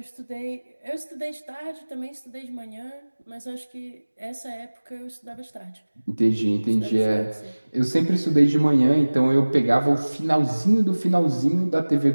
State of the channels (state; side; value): inverted; both; correlation -1.00